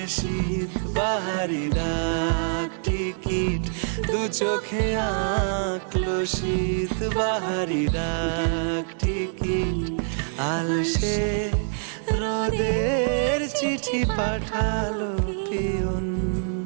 শীত বাহারি ডাক টিকিট দু চোখে আঁকলো শীত বাহারি ডাক টিকিট আলসে রোদের চিঠি পাঠালো পিয়ন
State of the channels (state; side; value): silent; left; 62 dB below the other